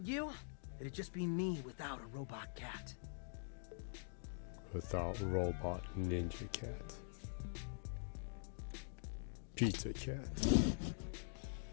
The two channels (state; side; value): silent; right; digital silence